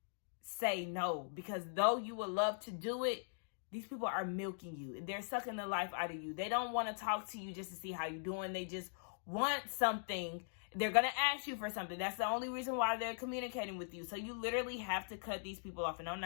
say no, because though you would love to do it, these people are milking you. They're sucking the life out of you. They don't want to talk to you just to see how you're doing. They just want something. They're going to ask you for something. That's the only reason why they're communicating with you. So you literally have to cut these people off. And I'm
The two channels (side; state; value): right; silent; digital silence